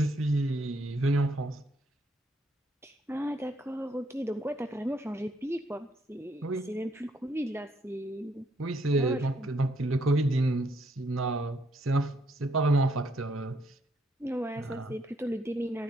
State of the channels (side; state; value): both; normal; correlation 0.71